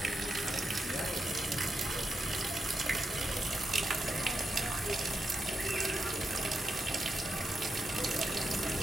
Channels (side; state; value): both; normal; correlation 0.85